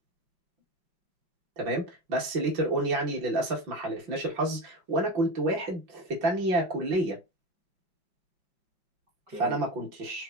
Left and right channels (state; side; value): late; left; 5.7 ms